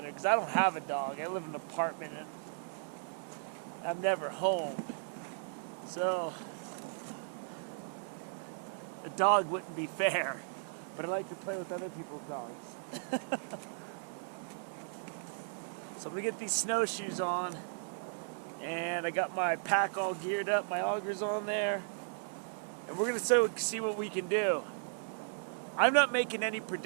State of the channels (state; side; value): silent; left; digital silence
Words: there, because I don't have a dog. I live in an apartment and I'm never home. So a dog wouldn't be fair, but I like to play with other people's dogs. So I'm gonna get these snowshoes on, and I got my pack all geared up, my augers on there, and we're gonna see what we can do. I'm not making any